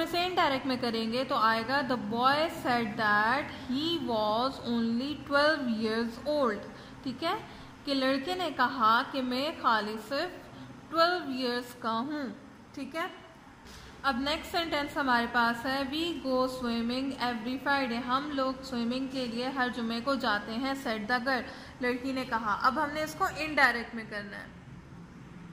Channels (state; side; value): identical; both; correlation 1.00